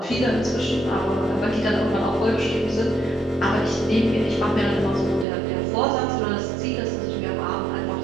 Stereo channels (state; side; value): drops out; left; at 5.2 s